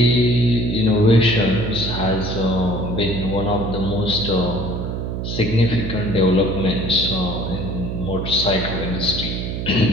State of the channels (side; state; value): right; noise; hum, 4 dB below the sound